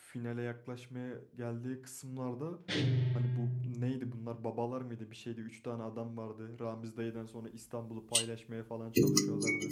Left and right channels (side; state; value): both; identical; correlation 1.00